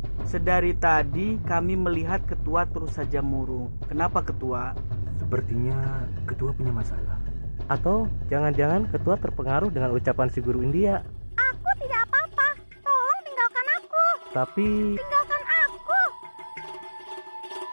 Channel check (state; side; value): inverted; both; correlation -1.00